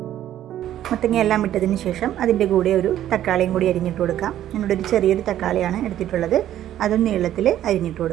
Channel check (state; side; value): quieter; left; 12.0 dB